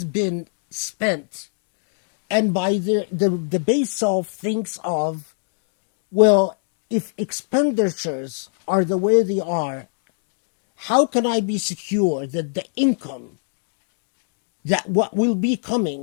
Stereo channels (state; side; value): silent; right; digital silence